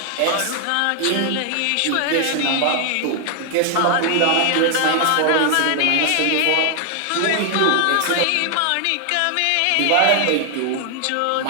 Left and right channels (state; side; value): different; both; correlation 0.00